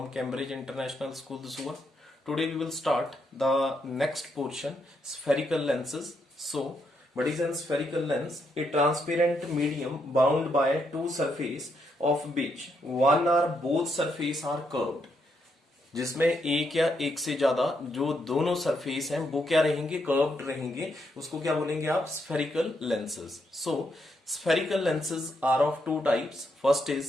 Cambridge International School, Dusua. Today we will start the next portion, spherical lenses. So, what is a spherical lens? A transparent medium bound by two surfaces of which one or both surface are curved. जिसमें एक या एक से ज्यादा जो दोनों surface हैं वो क्या रहेंगे, कर्व्ड रहेंगे, उसको क्या बोलेंगे आप, spherical lenses. So spherical lenses are of two types. First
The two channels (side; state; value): both; normal; correlation 0.78